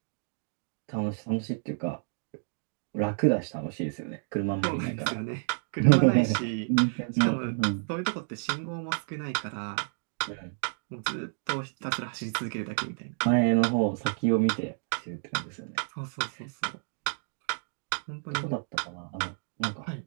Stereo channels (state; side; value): silent; left; digital silence